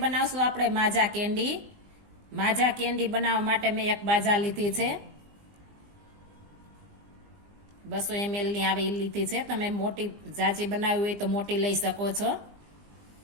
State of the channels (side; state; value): left; late; 20 ms